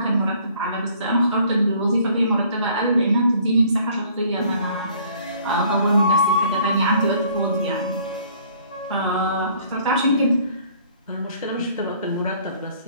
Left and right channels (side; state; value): both; inverted; correlation -0.58